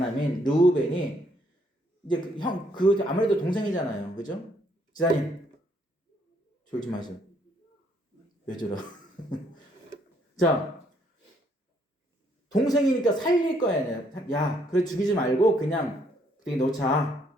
르우벤이 이제 아무래도 동생이잖아요. 그죠? 지사님, 졸지 마세요. 왜 저러? 자, 동생이니까 살릴 거야. 야, 그래 죽이지 말고 그냥 구덩이 놓자.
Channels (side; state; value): both; normal; correlation 0.69